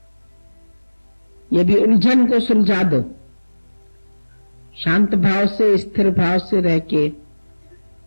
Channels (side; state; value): both; inverted; correlation -1.00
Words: ये भी उलझन को सुलझा दो, शांत भाव से, स्थिर भाव से रह के